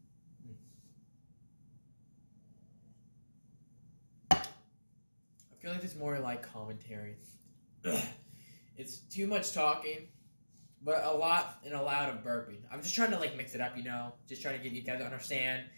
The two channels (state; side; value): inverted; both; correlation -1.00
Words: feel like it's more like commentary. It's too much talking, but a lot and a lot of burping. I'm just trying to mix it up, Just trying to get you guys to understand